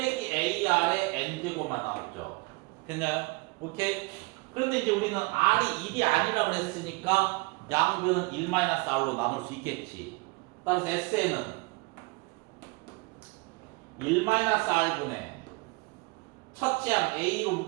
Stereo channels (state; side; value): quieter; left; 26.1 dB